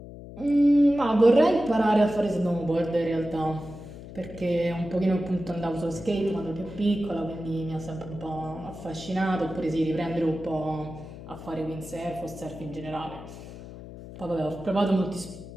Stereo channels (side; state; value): left; noise; hum, 14 dB below the sound